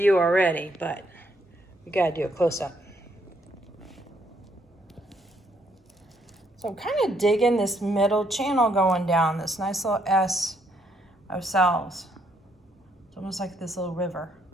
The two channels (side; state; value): both; normal; correlation 0.71